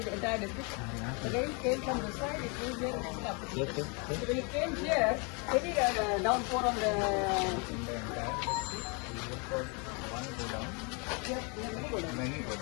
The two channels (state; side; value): quieter; right; 33.4 dB